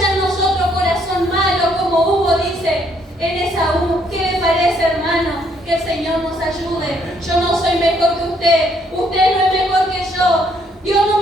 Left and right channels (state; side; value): normal; both; correlation 0.69